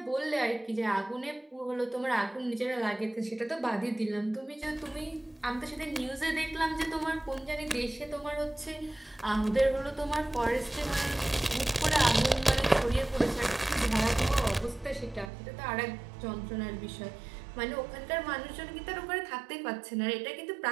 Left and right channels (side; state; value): left; drops out; at 15.3 s